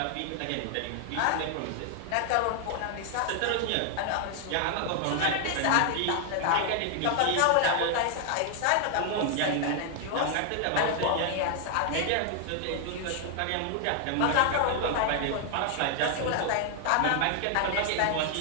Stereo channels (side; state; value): both; different; correlation 0.00